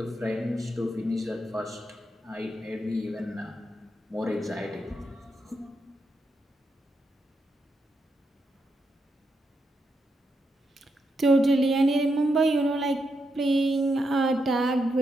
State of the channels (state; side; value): normal; both; correlation 0.83